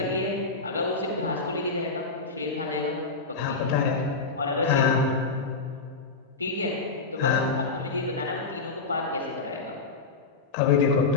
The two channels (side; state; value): right; quieter; 4.1 dB